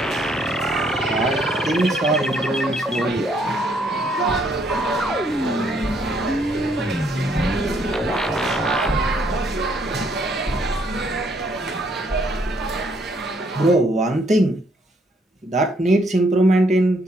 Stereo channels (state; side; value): normal; both; correlation 0.69